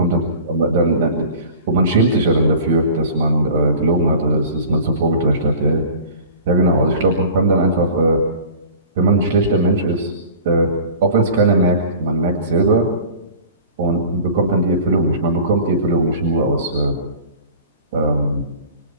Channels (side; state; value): both; inverted; correlation -0.42